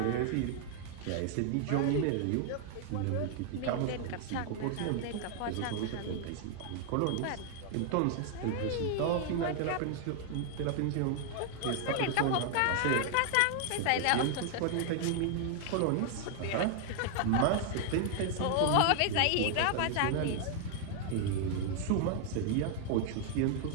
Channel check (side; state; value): both; different; correlation 0.00